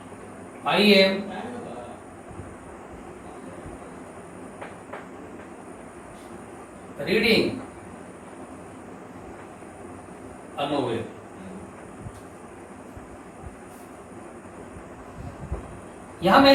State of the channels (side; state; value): both; identical; correlation 1.00